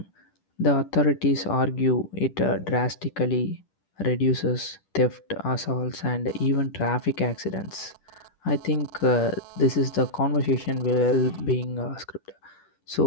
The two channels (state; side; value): late; right; 10 ms